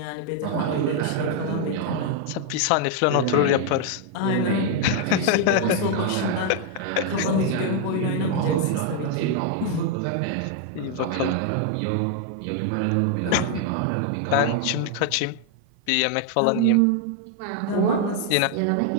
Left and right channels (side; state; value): both; different; correlation 0.00